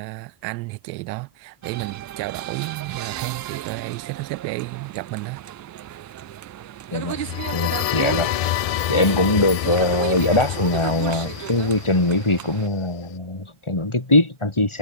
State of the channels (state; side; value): late; right; 1.6 ms